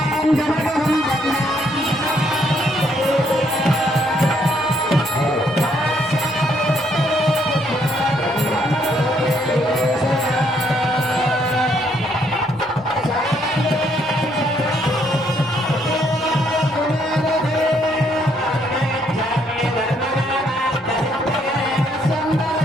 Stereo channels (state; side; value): normal; both; correlation 0.70